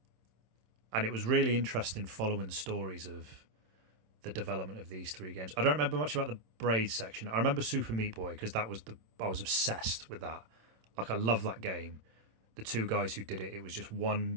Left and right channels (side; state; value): left; late; 27 ms